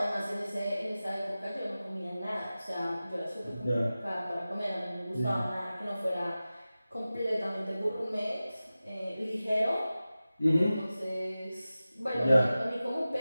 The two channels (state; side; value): inverted; both; correlation -0.96